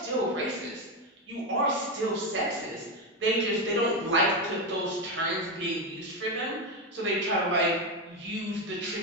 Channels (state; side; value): normal; both; correlation 0.10